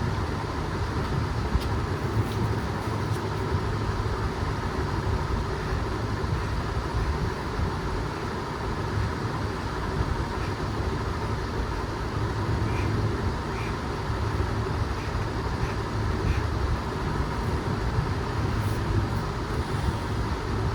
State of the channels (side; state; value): both; identical; correlation 1.00